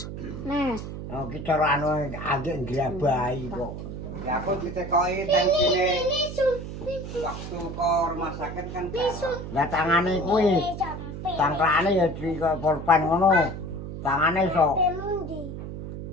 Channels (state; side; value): noise; right; hum, 8 dB below the sound